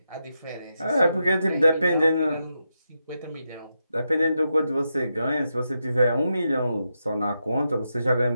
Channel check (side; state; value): both; inverted; correlation -0.86